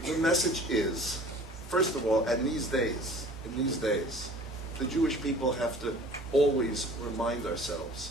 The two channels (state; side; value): normal; both; correlation 0.47